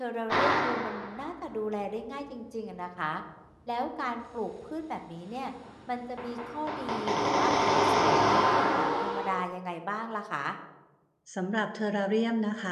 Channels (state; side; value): identical; both; correlation 1.00